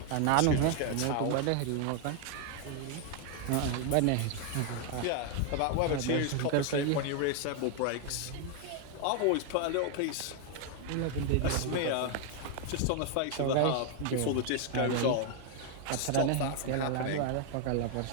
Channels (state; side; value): different; both; correlation 0.00